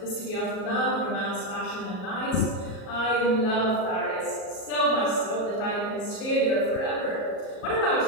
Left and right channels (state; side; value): late; right; 37 ms